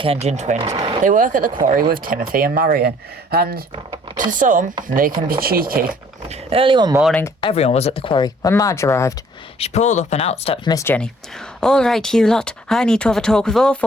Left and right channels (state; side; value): normal; both; correlation 0.57